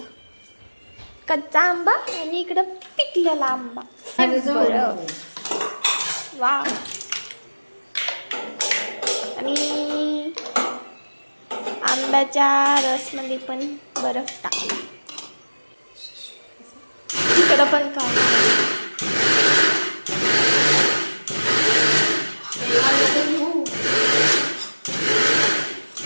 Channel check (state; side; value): inverted; both; correlation -1.00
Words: कच्चा आंबा आणि इकडं पिकलेला आंबा. बरं. वा. आणि आंब्याच्या रसमध्ये पण बर्फ टाकला. इकडं पण काय